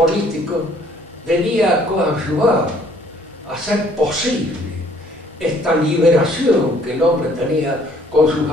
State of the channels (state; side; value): normal; both; correlation 0.60